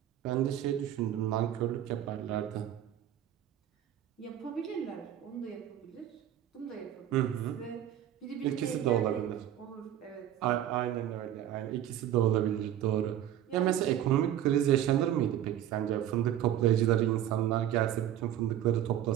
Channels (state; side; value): quieter; left; 11.4 dB